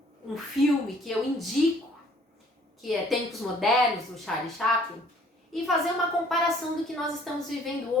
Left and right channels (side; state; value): both; normal; correlation 0.58